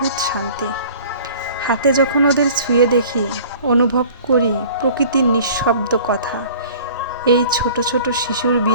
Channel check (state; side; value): inverted; both; correlation -0.47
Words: শান্তি। হাতে যখন ওদের ছুঁয়ে দেখি, অনুভব করি প্রকৃতির নিঃশব্দ কথা। এই ছোট ছোট শিশুর